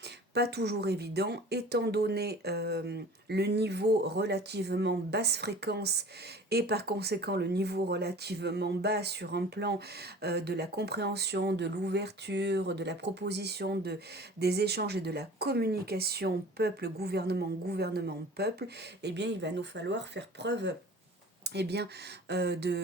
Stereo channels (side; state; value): both; normal; correlation 0.43